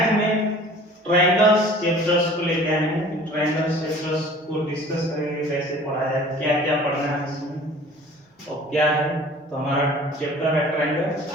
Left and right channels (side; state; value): both; normal; correlation 0.47